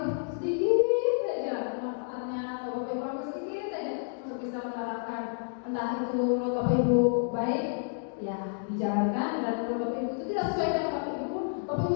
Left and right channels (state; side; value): silent; right; 58 dB below the other